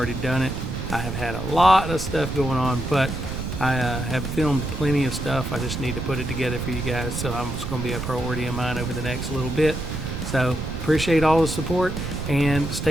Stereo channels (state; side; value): noise; right; rumble, 5 dB below the sound